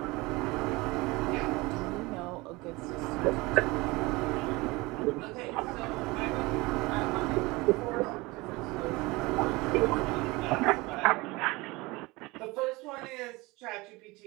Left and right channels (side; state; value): left; quieter; 22.9 dB